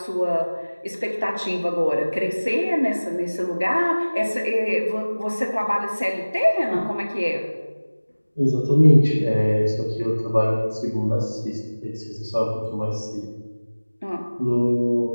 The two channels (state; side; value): inverted; both; correlation -1.00